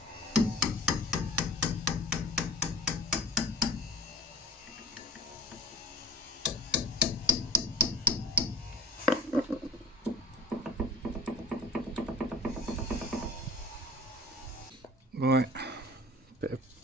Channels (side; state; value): both; normal; correlation 0.39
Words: Right, bit of